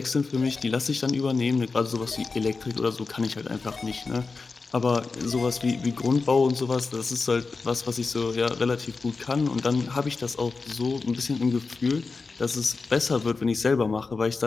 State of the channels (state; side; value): quieter; right; 4.2 dB